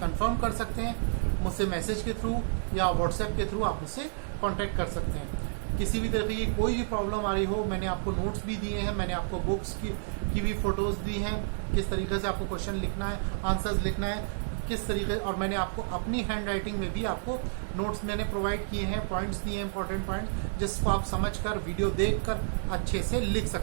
कर सकते हैं। मुझसे मैसेज के थ्रू या व्हाट्सएप के थ्रू आप मुझसे कांटेक्ट कर सकते हैं। किसी भी तरह की कोई भी प्रॉब्लम आ रही हो, मैंने आपको नोट्स भी दिए हैं, मैंने आपको बुक्स की भी फोटोज दी हैं, किस तरीके से आपको क्वेश्चन लिखना है, आंसर्स लिखना है, किस तरीके, और मैंने आपको अपनी हैंड राइटिंग में भी आपको नोट्स मैंने प्रोवाइड किए हैं, पॉइंट्स दिए हैं, इंपॉर्टेंट पॉइंट्स, जिसको आप समझकर वीडियो देखकर अच्छे से लिख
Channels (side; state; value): left; silent; digital silence